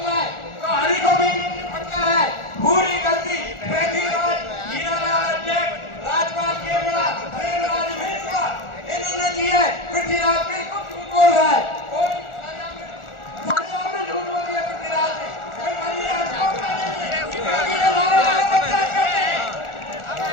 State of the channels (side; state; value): right; late; 1.4 ms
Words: है, तो हरि को भी पटका है। पूरी गलती पृथ्वीराज, हीरालाल अध्यक्ष, राजपाल केवड़ा, प्रेमराज मेसुआ इन्होंने की है। पृथ्वीराज बिल्कुल झूठ बोल रहा है, कोई सजा में झूठ बोल दिया पृथ्वीराज ने।